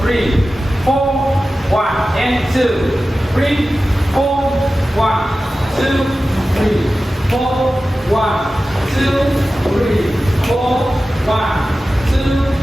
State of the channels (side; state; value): both; normal; correlation 0.94